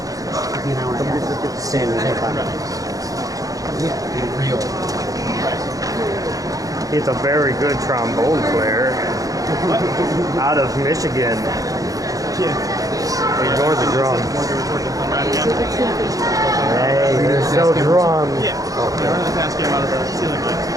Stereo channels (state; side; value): late; left; 0.17 ms